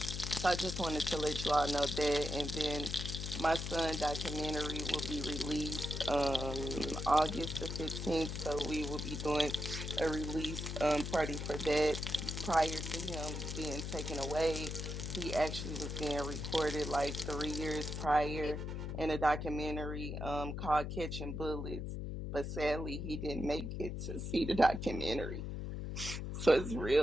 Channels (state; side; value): noise; left; hum, 4 dB below the sound